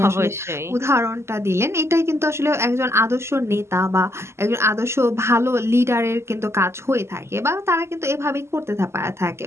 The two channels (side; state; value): left; late; 0.13 ms